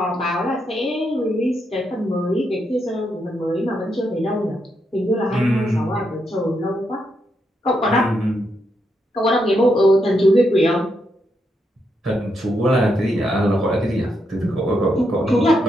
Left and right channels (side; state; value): both; normal; correlation 0.81